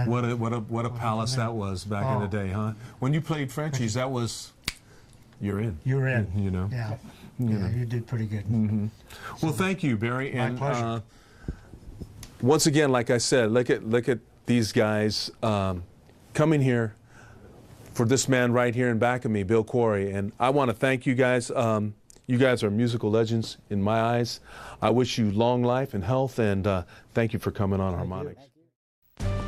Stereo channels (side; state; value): both; identical; correlation 1.00